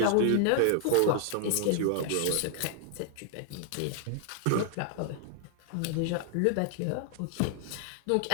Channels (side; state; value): both; different; correlation 0.00